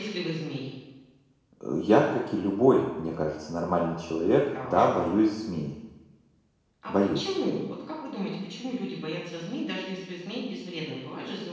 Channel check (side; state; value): both; identical; correlation 1.00